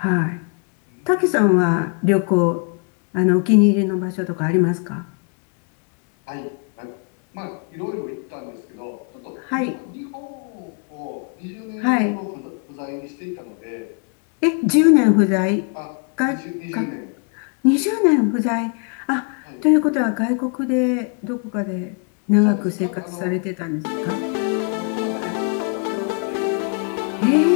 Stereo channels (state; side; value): quieter; right; 39.5 dB